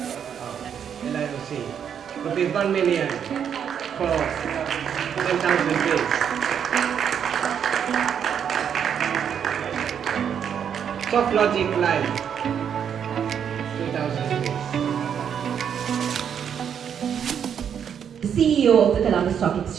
Rupees 1 million for 10,000 trees. Soft logic line, 2,000 trees. The CEO of the Colombo Stock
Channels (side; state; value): left; quieter; 8.2 dB